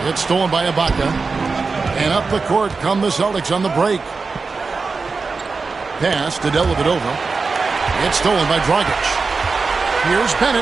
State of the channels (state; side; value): quieter; left; 4.4 dB